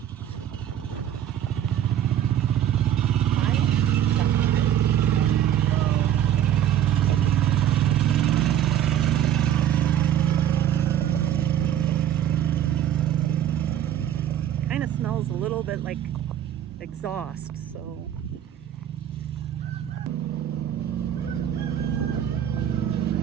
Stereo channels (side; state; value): left; quieter; 10.5 dB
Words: Kind of smells a little bit like exhaust, so.